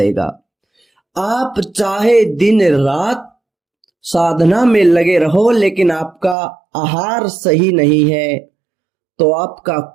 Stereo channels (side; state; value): left; drops out; at 6.4 s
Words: आप चाहे दिन रात साधना में लगे रहो, लेकिन आपका आहार सही नहीं है तो आपका